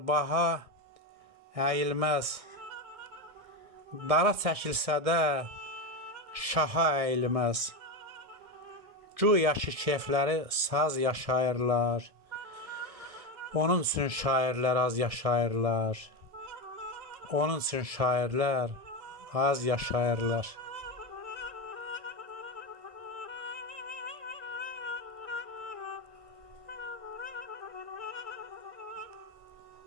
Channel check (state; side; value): late; left; 1.6 ms